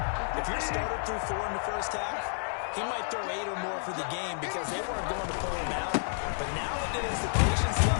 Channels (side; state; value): right; silent; 57 dB below the other